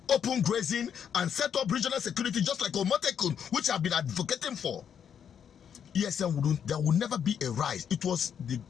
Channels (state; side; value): quieter; right; 8.1 dB